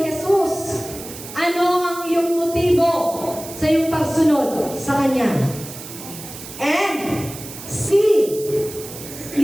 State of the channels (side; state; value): right; noise; hiss, 13 dB below the sound